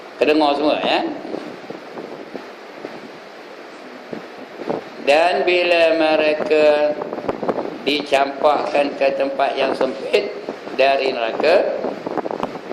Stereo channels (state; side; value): identical; both; correlation 1.00